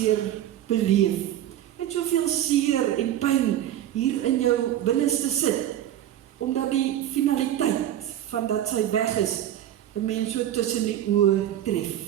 beleef? Met soveel seer en pyn hier in jou binneste sit, omdat die finaliteit van dat sy weg is, 'n mens so tussen die oë tref.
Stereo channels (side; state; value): left; quieter; 11.8 dB